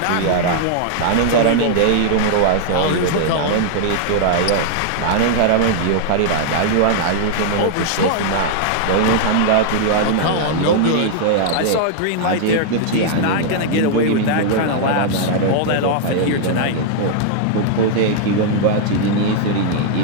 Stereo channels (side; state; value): both; different; correlation -0.01